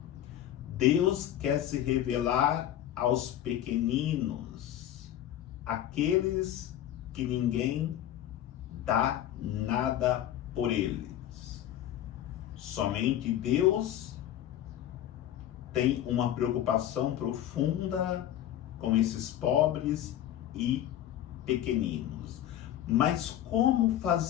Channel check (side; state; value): right; quieter; 11.9 dB